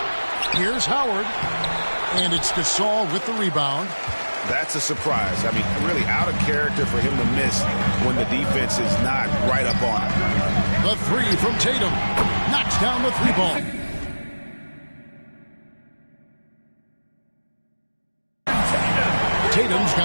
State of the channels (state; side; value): inverted; both; correlation -1.00